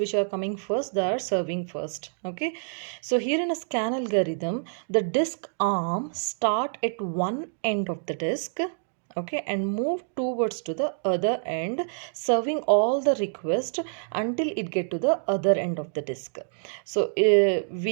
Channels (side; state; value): left; silent; digital silence